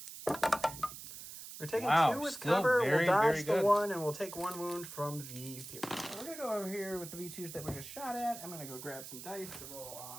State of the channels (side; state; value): right; noise; hiss, 12 dB below the sound